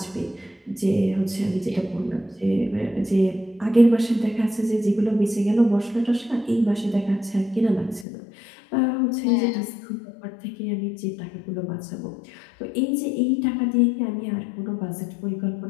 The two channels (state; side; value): drops out; right; at 8.1 s